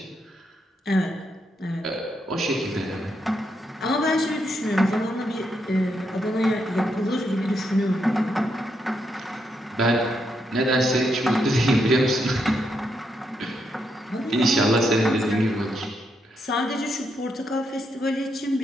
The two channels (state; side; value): normal; both; correlation 0.80